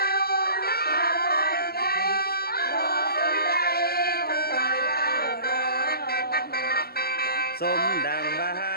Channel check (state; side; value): late; right; 0.45 ms